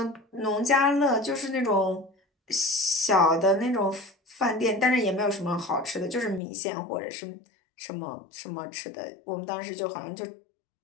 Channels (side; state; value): right; drops out; at 6.4 s